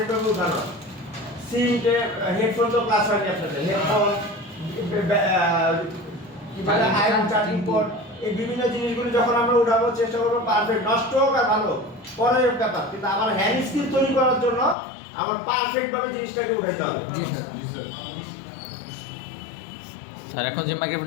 ভাবে উঠানো। সিম হেডফোন তো ক্লাস হয়নি আপনাদের, হেডফোন আয়রন চার্জিং পোর্ট, এই বিভিন্ন জিনিসগুলো যখন আমরা উঠাবো চেষ্টা করবো পারফেক্ট, নষ্ট হোক আর ভালো পরের ব্যাপার, কিন্তু আমার হ্যান্ড স্কিল তৈরি করার জন্য আমার পারফেক্ট ভাবে জিনিসটাকে উঠাইতে হবে। স্যার এখন যে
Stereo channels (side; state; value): right; drops out; at 14.8 s